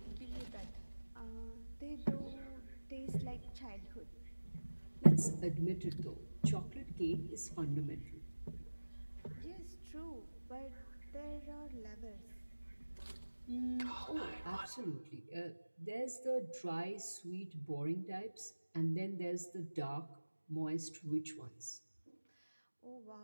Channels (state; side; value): inverted; both; correlation -1.00